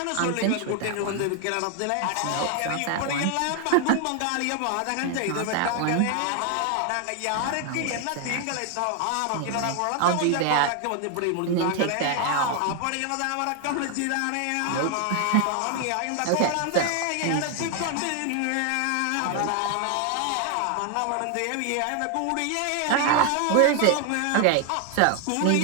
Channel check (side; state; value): both; different; correlation 0.00